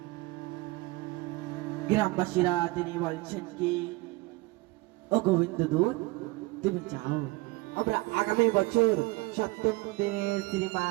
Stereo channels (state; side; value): quieter; left; 22.1 dB